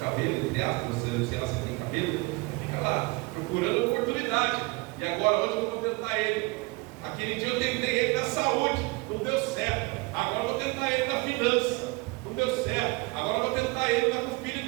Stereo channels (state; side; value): quieter; left; 26.0 dB